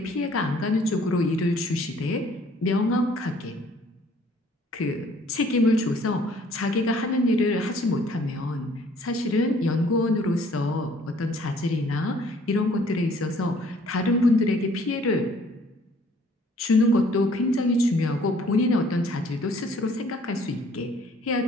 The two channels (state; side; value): normal; both; correlation 0.58